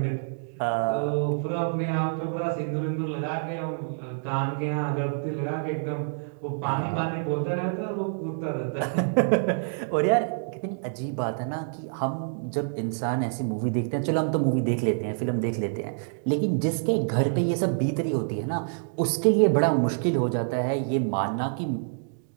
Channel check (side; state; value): left; silent; digital silence